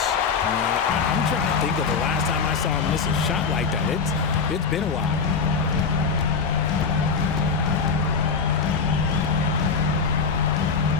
I'm trying to think of the last time I saw him miss a shot like that. It's been a while.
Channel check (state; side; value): quieter; right; 5.5 dB